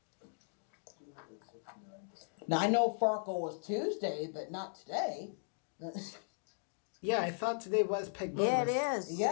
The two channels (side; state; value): right; silent; digital silence